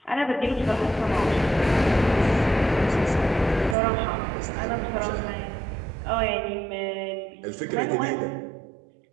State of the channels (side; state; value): left; drops out; at 3.8 s